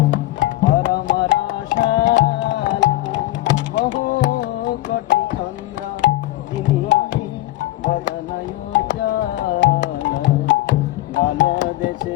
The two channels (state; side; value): quieter; right; 16.4 dB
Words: পরম রসাল বহু কোটি চন্দ্র তিনি বদনয় চল বল